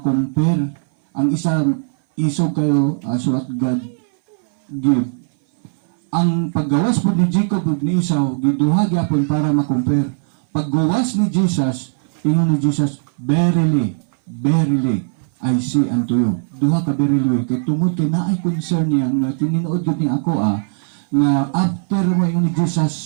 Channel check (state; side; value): silent; left; 60 dB below the other